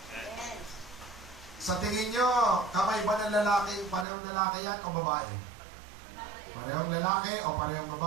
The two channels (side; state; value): left; drops out; at 4.0 s